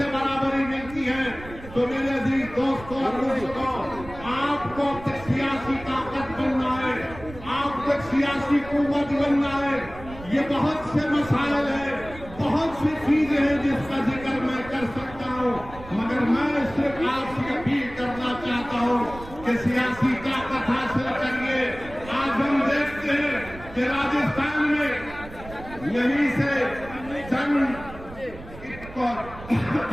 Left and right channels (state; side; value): noise; right; rumble, 16 dB below the sound